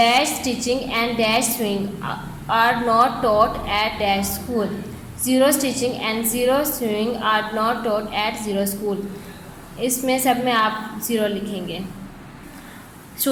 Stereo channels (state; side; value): identical; both; correlation 1.00